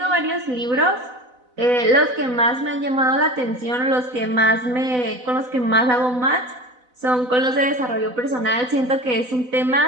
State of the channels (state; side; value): late; left; 4.0 ms